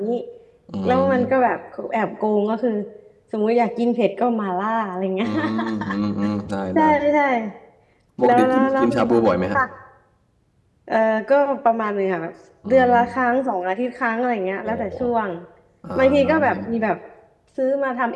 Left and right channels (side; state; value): both; identical; correlation 1.00